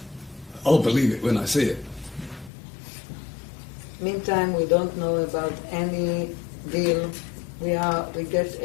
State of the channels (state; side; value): drops out; right; at 2.5 s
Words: I'll believe it when I see it. Meantime, we don't know about any deal. We get